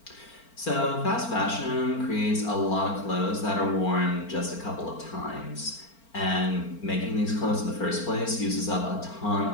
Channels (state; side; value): late; right; 4.4 ms